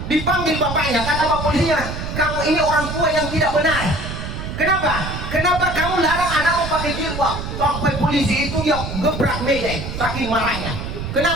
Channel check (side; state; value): right; noise; rumble, 6 dB below the sound